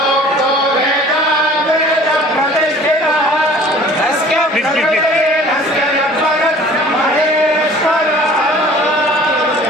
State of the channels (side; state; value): both; normal; correlation 0.48